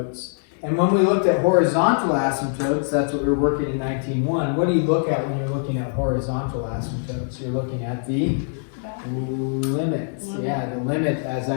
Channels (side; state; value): right; silent; 63 dB below the other